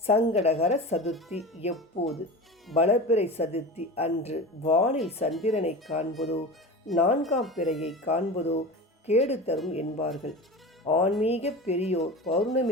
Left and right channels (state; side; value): normal; both; correlation 0.31